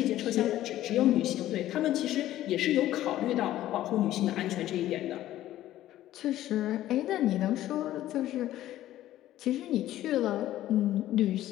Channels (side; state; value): right; quieter; 13.8 dB